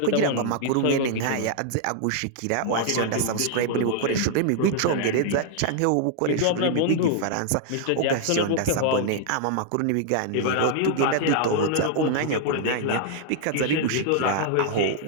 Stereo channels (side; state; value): both; different; correlation -0.01